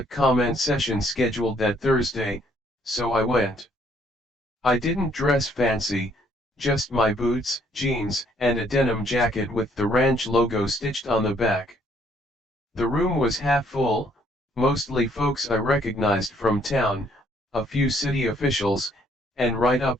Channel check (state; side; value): normal; both; correlation 0.65